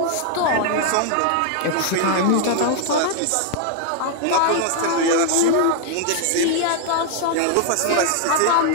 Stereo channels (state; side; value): different; both; correlation 0.00